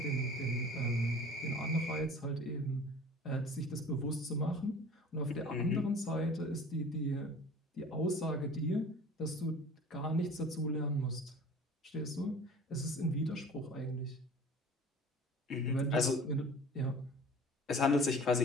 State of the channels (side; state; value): both; normal; correlation 0.43